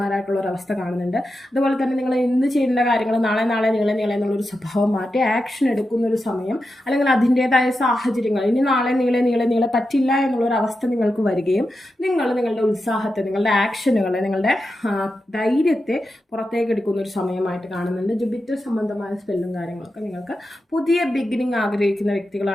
ഒരു അവസ്ഥ കാണുന്നുണ്ട്. അതുപോലെ തന്നെ നിങ്ങൾ എന്ത് ചെയ്യേണ്ട കാര്യങ്ങൾ നാളെ നീളെ എന്നുള്ളൊരു സ്വഭാവം മാറ്റി ആക്ഷൻ എടുക്കുന്ന ഒരു സമയം, അല്ലെങ്കിൽ അതിൻ്റെതായ സാഹചര്യങ്ങൾ ഇനി നാളെ നീളെ പറ്റില്ല എന്നുള്ളൊരു അവസ്ഥ നിങ്ങൾക്ക് വരികയും നിങ്ങൾ നിങ്ങളുടെ ഉത്സാഹത്തെ, നിങ്ങളുടെ ആക്ഷനുകളെ, നിങ്ങളുടെ ധൈര്യത്തെ പുറത്തേക്ക് എടുക്കുന്ന ഒരു സമയമായിട്ട് കാണുന്നുണ്ട്. ജുപിറ്റർ സംബന്ധമായ സ്പെല്ലും കാര്യങ്ങളൊക്കെ നിങ്ങൾക്ക് പുതിയ ബിഗിനിങ് ആഗ്രഹിക്കുന്ന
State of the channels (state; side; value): normal; both; correlation 0.89